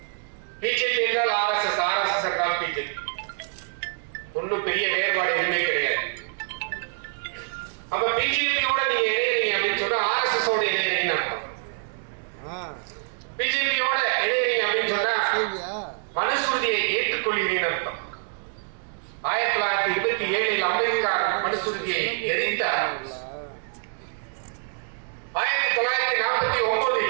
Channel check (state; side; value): silent; left; digital silence